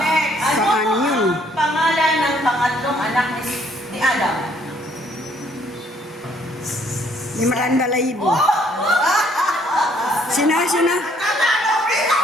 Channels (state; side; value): normal; both; correlation 0.65